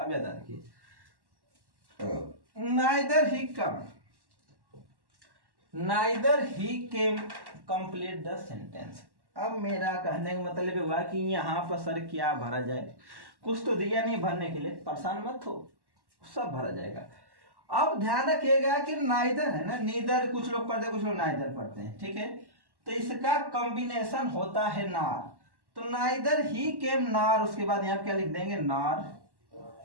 याद रखिए, neither he came complete the sentence. अब मेरा कहने का मतलब हुआ कि यहाँ पर सर क्या भरा जाए, कुछ तो दिया नहीं भरने के लिए, परेशान मत हो, सब भरा जाएगा। अब ध्यान रखिएगा कि नाइदर है ना, नीदर कुछ लोग पढ़ते कुछ लोग नाइदर पढ़ते हैं, ठीक है। तो इसका कॉम्बिनेशन होता है नार। तो नाइदर ही केम नार, उसके बाद यहाँ क्या लिख देंगे, नार।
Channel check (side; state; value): left; late; 1.1 ms